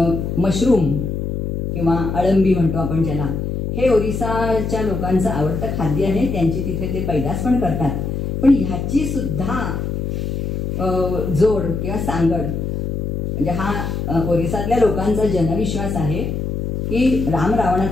मशरूम किंवा अळंबी म्हणतो आपण ज्याला, हे ओरिसाच्या लोकांचं आवडतं खाद्य आहे. त्यांची तिथे ते पैदास पण करतात. पण ह्याची सुद्धा जोड किंवा सांगड, म्हणजे हा ओरिसातल्या लोकांचा जनविश्वास आहे की राम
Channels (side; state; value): left; noise; hum, 3 dB below the sound